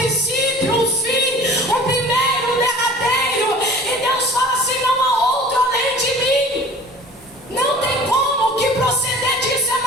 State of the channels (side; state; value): both; normal; correlation 0.44